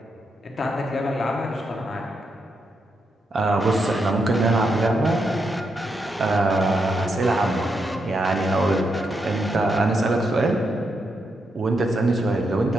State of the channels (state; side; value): normal; both; correlation 0.82